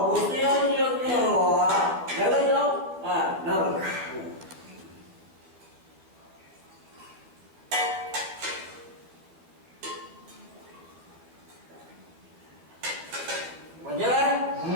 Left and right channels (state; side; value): late; left; 13 ms